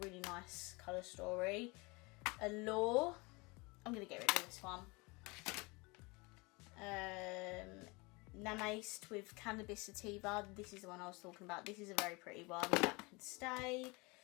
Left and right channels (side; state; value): right; quieter; 26.5 dB